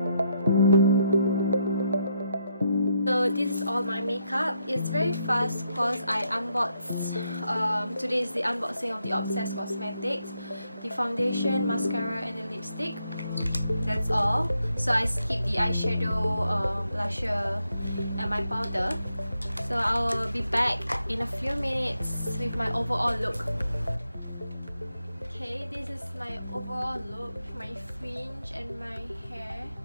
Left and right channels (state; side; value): inverted; both; correlation -0.79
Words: So this is all my makeup. It's very fast because I unboxed. Today is the unboxing of the Obsess Cosmetics, the foundation, mascara, and the lipstick. That's all. So I skipped the eyeshadow, blusher, and my powder. So I'll be back in a few minutes with my overall look. Okay, this is my overall look, my fringe and my hair.